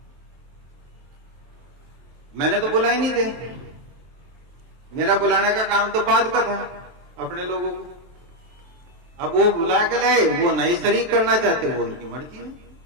मैंने तो बुला ही नहीं थे, मेरा बुलाने का काम तो बाद का था अपने लोगों को। अब वो बुला के लाए, वो नहीं शरीक करना चाहते, वो उनकी मर्जी है।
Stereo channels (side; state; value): left; late; 23 ms